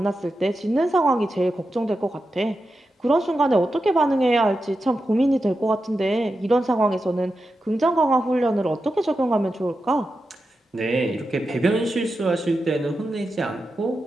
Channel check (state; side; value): normal; both; correlation 0.90